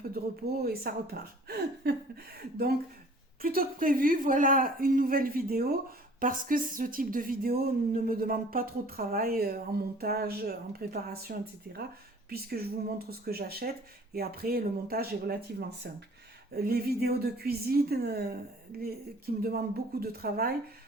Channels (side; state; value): both; normal; correlation 0.51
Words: de repos et ça repart. Donc, plutôt que prévu, voilà une nouvelle vidéo parce que ce type de vidéo ne me demande pas trop de travail en montage, en préparation, etc. Puisque je vous montre ce que j'achète et après le montage est relativement simple. Les vidéos de cuisine qui me demandent beaucoup de travail,